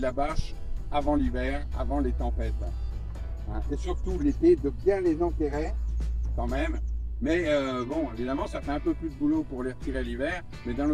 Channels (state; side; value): identical; both; correlation 1.00